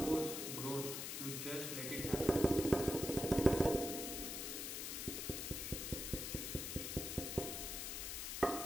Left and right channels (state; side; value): noise; left; hiss, 4 dB below the sound